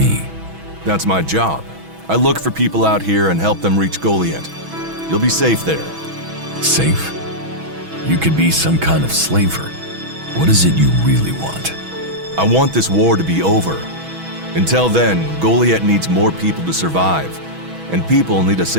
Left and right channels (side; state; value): left; late; 6.2 ms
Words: That's my job. I look for people out here and help them reach Goliath. You'll be safe there. Safe? You could be some kind of slaver. What is it you really want? I want this war to be over. Until then, Goliath needs more people to survive, and people need a